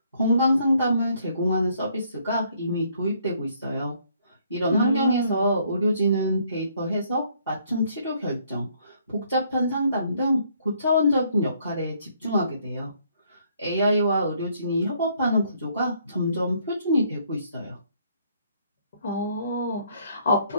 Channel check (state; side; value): inverted; both; correlation -0.66